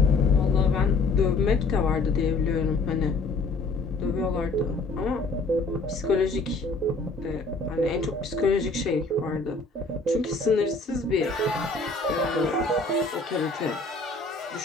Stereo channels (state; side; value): quieter; right; 3.5 dB